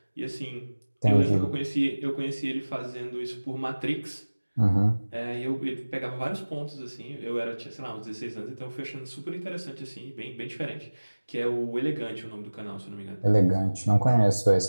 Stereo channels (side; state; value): both; inverted; correlation -1.00